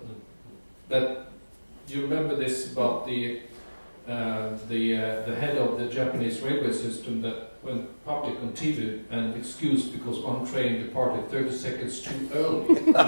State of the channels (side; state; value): both; inverted; correlation -1.00